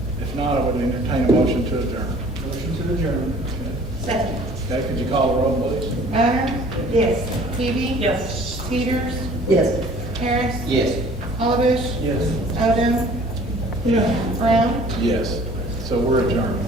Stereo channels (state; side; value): normal; both; correlation 0.51